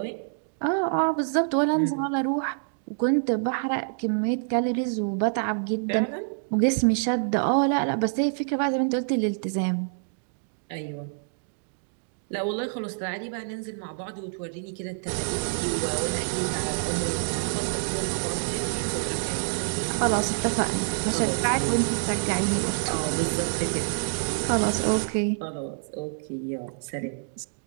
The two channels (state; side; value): silent; left; digital silence